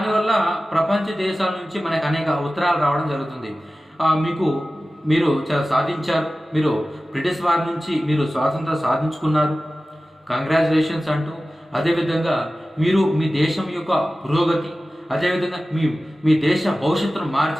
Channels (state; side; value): normal; both; correlation 0.95